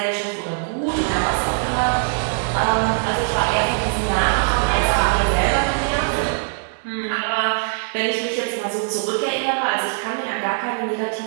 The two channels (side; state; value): left; silent; digital silence